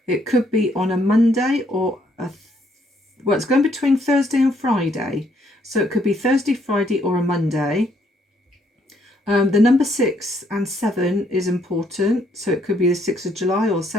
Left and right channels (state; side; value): normal; both; correlation 0.70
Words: It could be on a Monday or well, it's going between Thursday and Friday. So it could be Thursday, Friday, or a Monday. The number 6 and 7 is important. So it could be the 6th of July or